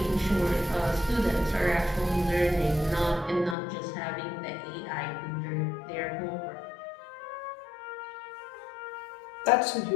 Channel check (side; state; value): right; drops out; at 3.6 s